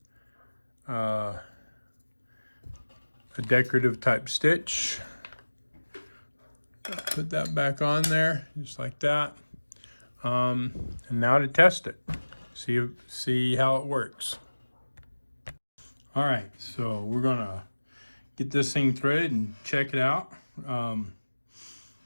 a decorative type stitch. Put that back on there, just like that. And now to test it. See how it works. All right, so we're gonna get this thing threaded and check it out.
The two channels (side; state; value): both; inverted; correlation -1.00